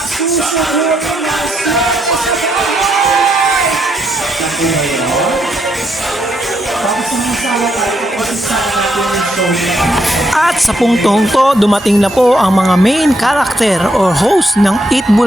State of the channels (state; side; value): normal; both; correlation 0.77